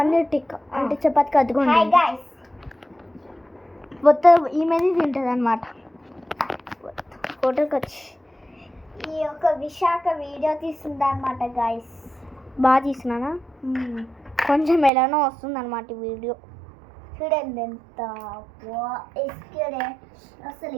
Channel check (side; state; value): left; drops out; at 14.9 s